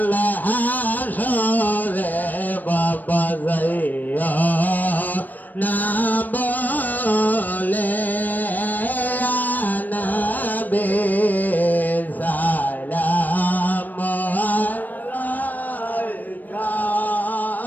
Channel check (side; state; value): right; late; 0.086 ms